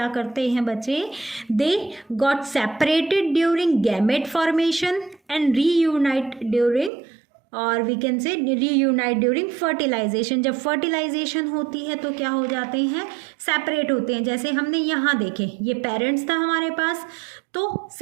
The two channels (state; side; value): drops out; left; at 6.9 s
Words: करते हैं बच्चे, they got separated during gamete formation and reunite during, और we can say reunite during fertilization. जब फर्टिलाइजेशन होती है तो क्या हो जाते हैं, सेपरेट होते हैं। जैसे हमने यहाँ देखे, ये पेरेंट्स था हमारे पास, तो